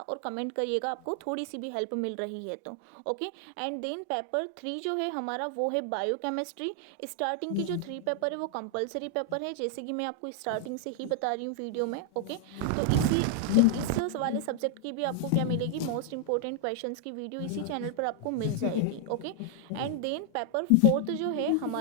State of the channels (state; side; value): different; both; correlation 0.00